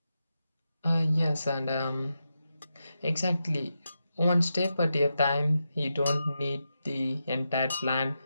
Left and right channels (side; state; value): both; inverted; correlation -0.88